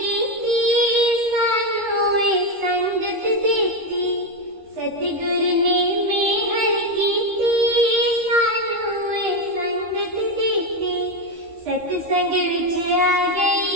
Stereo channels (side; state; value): left; late; 13 ms